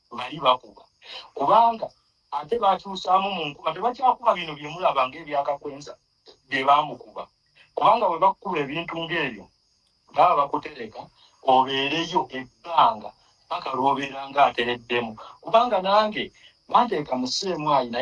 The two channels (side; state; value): both; identical; correlation 1.00